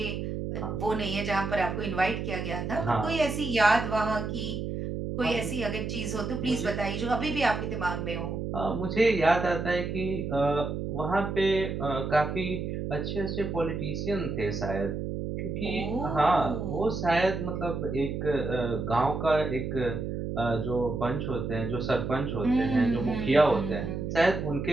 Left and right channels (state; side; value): noise; right; hum, 4 dB below the sound